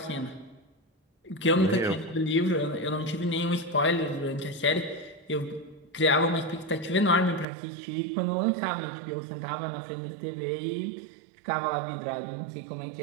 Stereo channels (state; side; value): drops out; left; at 7.5 s